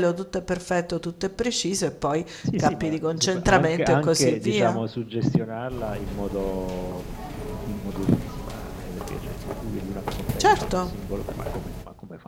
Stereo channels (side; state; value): both; identical; correlation 1.00